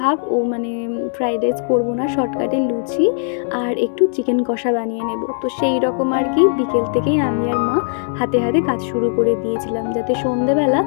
ও মানে ফ্রাইড রাইস করবো না, শর্টকাটে লুচি আর একটু চিকেন কষা বানিয়ে নেব। তো সেই রকম আর কি বিকেল থেকেই আমি আর মা হাতে হাতে কাজ শুরু করে দিয়েছিলাম, যাতে সন্ধেবেলা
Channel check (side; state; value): right; silent; 63 dB below the other